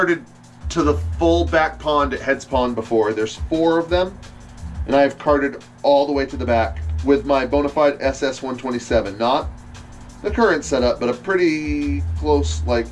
to the full back pond at Heads Pond before. There's 4 of them, and I've carted all the way to the back with my Bonafide SS127. Not the current setup, but a pretty close, like,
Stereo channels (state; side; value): identical; both; correlation 1.00